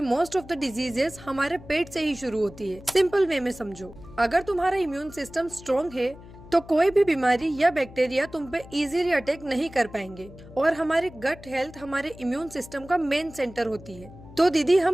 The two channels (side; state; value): left; noise; hum, 18 dB below the sound